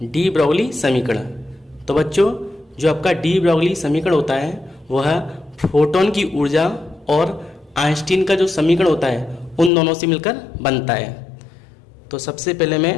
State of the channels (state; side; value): drops out; right; at 9.7 s